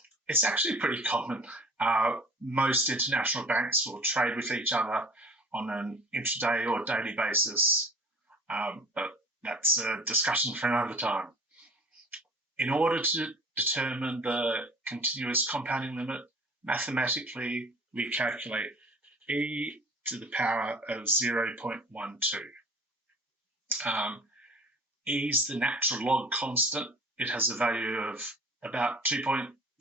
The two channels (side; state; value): both; normal; correlation 0.45